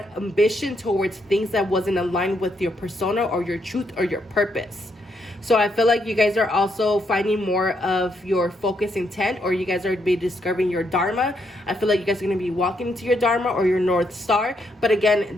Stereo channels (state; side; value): normal; both; correlation 0.77